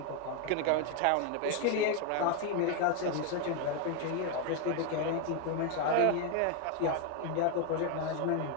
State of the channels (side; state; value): both; different; correlation 0.01